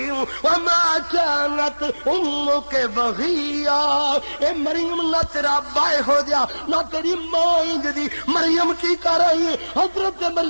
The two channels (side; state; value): both; inverted; correlation -1.00